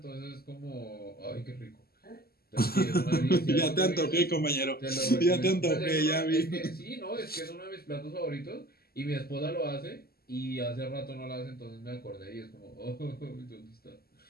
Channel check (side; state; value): right; late; 0.45 ms